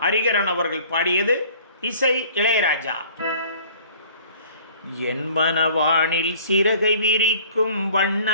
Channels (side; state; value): both; inverted; correlation -0.51